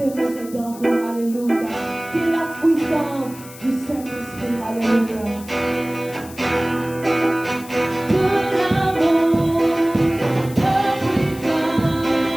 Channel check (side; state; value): left; noise; hiss, 18 dB below the sound